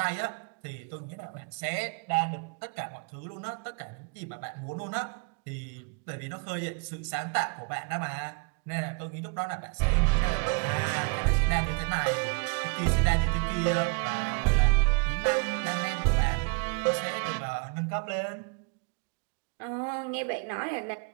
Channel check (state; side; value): quieter; left; 35.7 dB